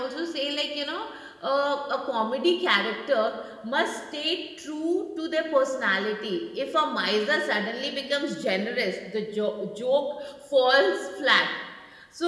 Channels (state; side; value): identical; both; correlation 1.00